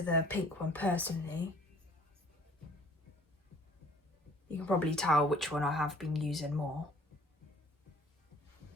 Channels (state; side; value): normal; both; correlation 0.54